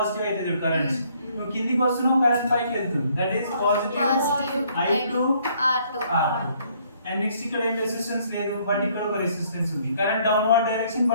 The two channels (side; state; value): both; inverted; correlation -0.65